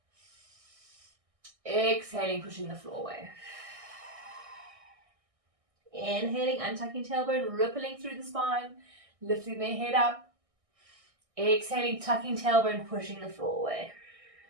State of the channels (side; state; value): left; late; 1.6 ms